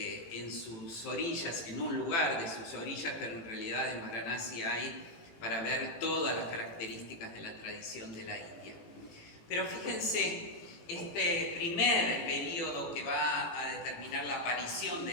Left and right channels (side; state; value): right; late; 18 ms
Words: sus orillas, en un lugar de sus orillas, pero en realidad en Varanasi hay para ver todas las características de la tradición de la India. Pero fíjense, este primer periodo que va a determinar la aparición